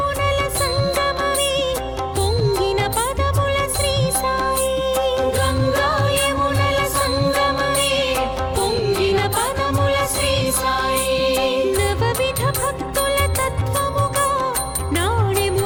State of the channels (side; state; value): both; identical; correlation 1.00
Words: సంగమమే పొంగిన పదముల శ్రీ సాయి గంగా యమునల సంగమమే పొంగిన పదముల శ్రీ సాయి నవవిధ భక్తుల తత్వముగా